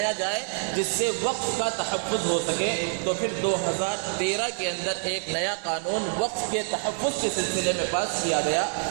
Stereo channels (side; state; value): left; silent; 59 dB below the other